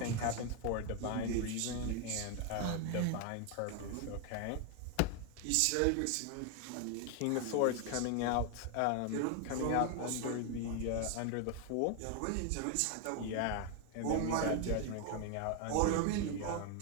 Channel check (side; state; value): both; different; correlation 0.01